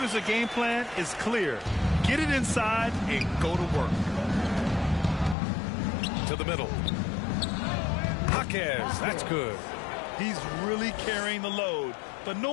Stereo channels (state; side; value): drops out; right; at 5.4 s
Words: game plan is clear. Get it inside and go to work. To the middle. Jaquez, that's good. He's really carrying the load, but